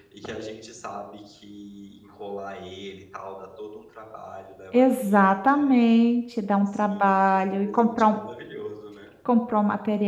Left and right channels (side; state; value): both; identical; correlation 1.00